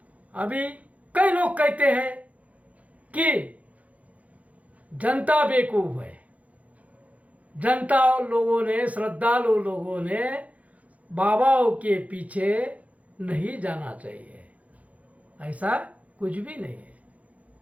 अभी कई लोग कहते हैं कि जनता बेवकूफ है, जनता लोगों ने, श्रद्धालु लोगों ने बाबाओं के पीछे नहीं जाना चाहिए। ऐसा कुछ भी नहीं है,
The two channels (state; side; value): late; left; 0.069 ms